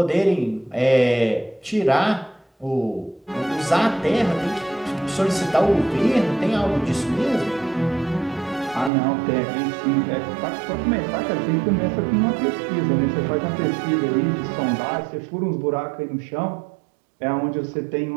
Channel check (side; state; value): left; drops out; at 8.9 s